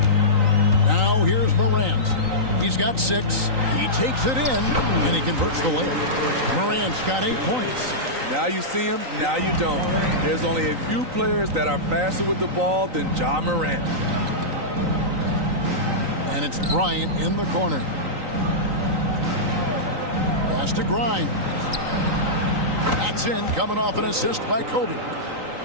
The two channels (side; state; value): left; late; 3.9 ms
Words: Now here's Morant. He's got 6. He takes it in, and he converts the layup. Morant's got 8 points. Now you see him, now you don't. There's only a few players that are faster with the ball than Ja Morant. And it's Bryant in the corner. Pass to Grimes. That's in, coming off an assist by Kobe.